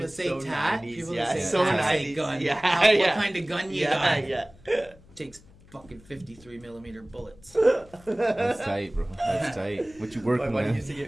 that say so tat. 90s, People yeah, that say so tat say 90s, gun. yeah, What yeah. kind of gun you Yeah, got? yeah. Takes fucking 53 millimeter bullets. That's tight, bro. That's tight. What you My working buddy with? used to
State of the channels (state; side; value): noise; left; hum, 25 dB below the sound